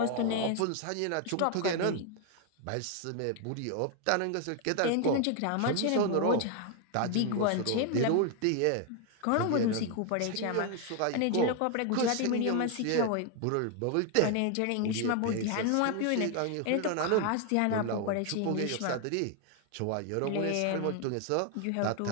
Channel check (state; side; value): different; both; correlation 0.01